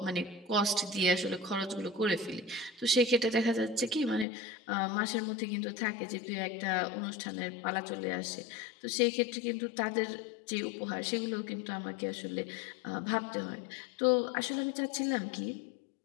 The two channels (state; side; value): drops out; right; at 4.2 s